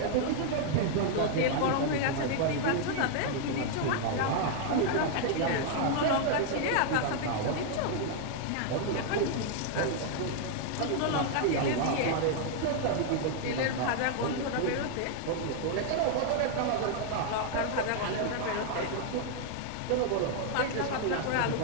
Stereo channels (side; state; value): both; different; correlation 0.00